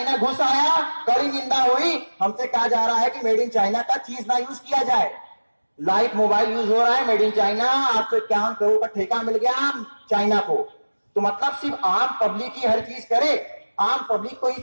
घुस आया, कड़ी निंदा हुई। हमसे कहा जा रहा है कि मेड इन चाइना का चीज ना यूज किया जाए। लाइट मोबाइल यूज हो रहा है मेड इन चाइना, 851 करोड़ का ठेका मिल गया चाइना को। तो मतलब सिर्फ आम पब्लिक ही हर चीज करे, आम पब्लिक को ही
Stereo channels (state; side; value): inverted; both; correlation -1.00